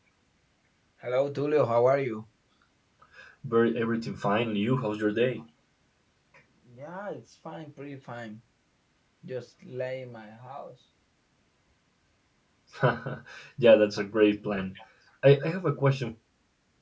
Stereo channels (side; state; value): both; identical; correlation 1.00